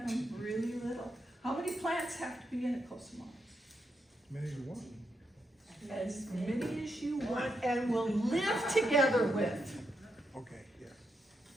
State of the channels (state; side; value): normal; both; correlation 0.82